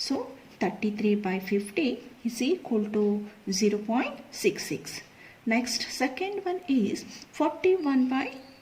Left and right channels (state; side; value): identical; both; correlation 1.00